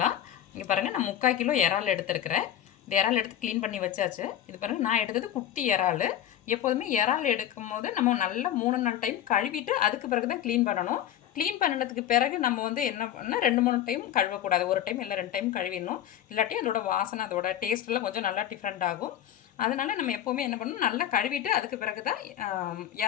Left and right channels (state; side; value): quieter; right; 11.0 dB